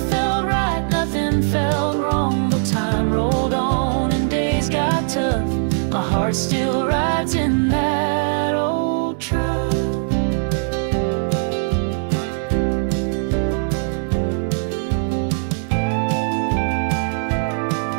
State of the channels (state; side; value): silent; left; 65 dB below the other